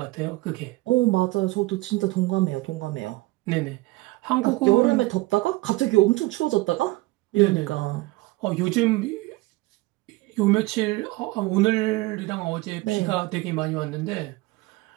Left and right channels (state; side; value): quieter; left; 21.1 dB